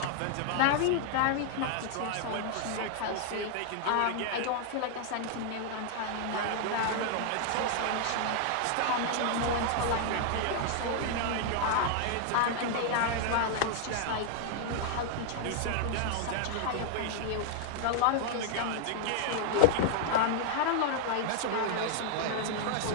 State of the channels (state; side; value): different; both; correlation 0.00